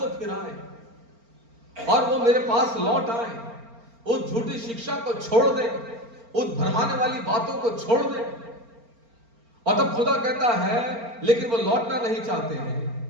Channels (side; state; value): left; late; 4.4 ms